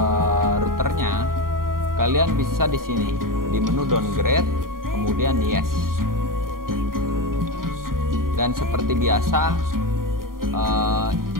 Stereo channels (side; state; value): left; late; 0.91 ms